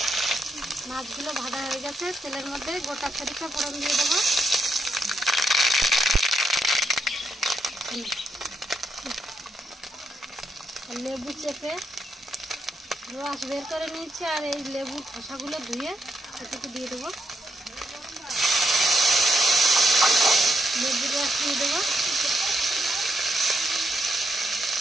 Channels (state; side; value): normal; both; correlation 0.80